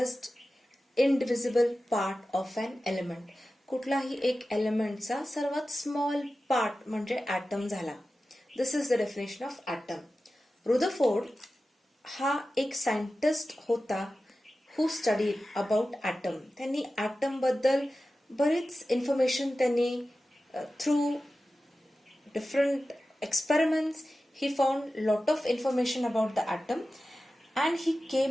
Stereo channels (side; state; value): both; normal; correlation 0.94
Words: indivisible part of an element. कुठलाही एक एलिमेंटचा सर्वात small part म्हणजे atom झाला. This is the definition of atom. Rutherford हा एक scientist होता who studied about atom. त्यांनी ॲटम बद्दल बरीच इन्फॉर्मेशन त्यांनी through different experiments he found lot of information about the atom and he